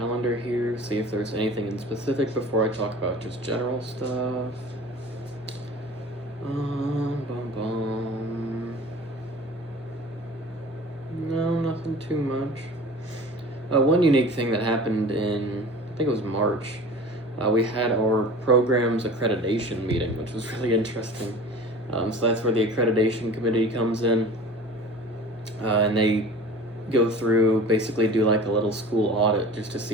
here, see if there's anything in specific before I talk about just general stuff. No, nothing too much. One unique thing that happened in, I think it was March, we had our program's accreditation meeting, which was really interesting. So that's where the accreditation committee comes in, and they go through, basically do like a little school audit just to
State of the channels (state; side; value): normal; both; correlation 0.41